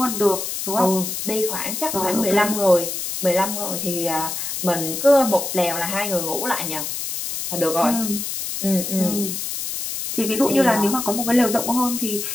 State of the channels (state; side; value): noise; left; hiss, 4 dB below the sound